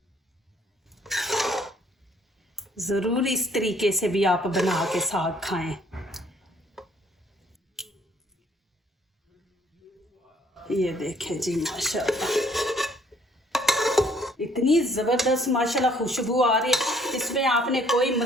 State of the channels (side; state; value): both; normal; correlation 0.62